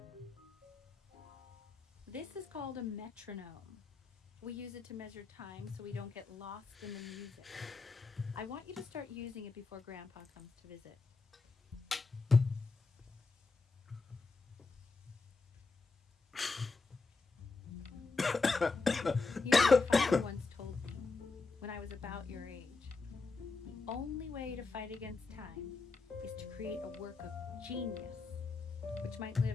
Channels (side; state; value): right; quieter; 4.1 dB